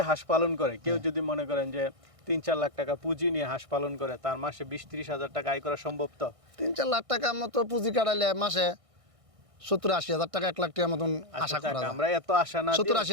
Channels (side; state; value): left; late; 1.6 ms